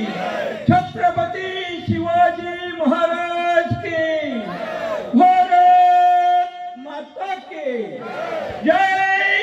छत्रपति शिवाजी महाराज की, भारत माता की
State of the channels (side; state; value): both; identical; correlation 1.00